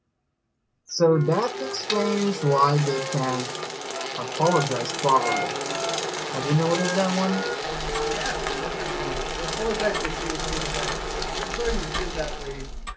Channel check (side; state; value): both; identical; correlation 1.00